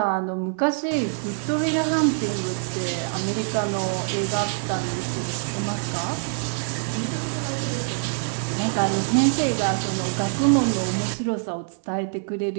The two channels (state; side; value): silent; left; digital silence